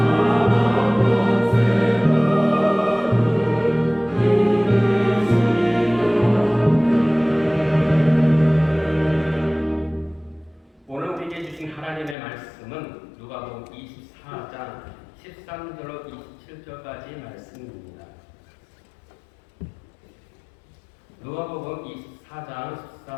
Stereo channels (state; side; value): drops out; right; at 12.2 s